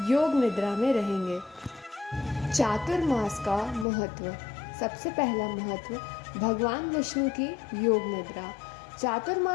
योग निद्रा में रहेंगे। चातुर्मास का महत्व। सबसे पहला महत्व भगवान विष्णु की योग निद्रा।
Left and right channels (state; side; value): drops out; right; at 3.9 s